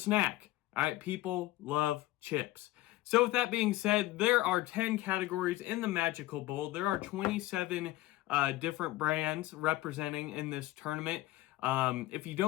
All right, people love chips. So with that being said, there are 10 categories in the Magical Bowl. There are 27 different brands representing in this tournament. If you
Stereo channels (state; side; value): quieter; right; 17.3 dB